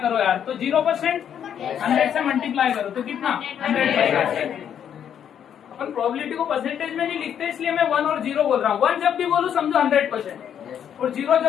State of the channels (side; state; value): right; quieter; 9.0 dB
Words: यार, तो 0% 100 से मल्टीप्लाई करो तो कितना 100%। अपन प्रोबेबिलिटी को परसेंटेज में नहीं लिखते, इसलिए मैं 1 और 0 बोल रहा हूँ। 1 जब भी बोलूँ समझो 100% और 0